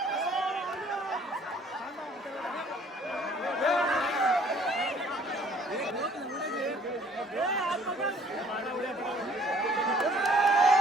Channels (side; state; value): both; normal; correlation 0.58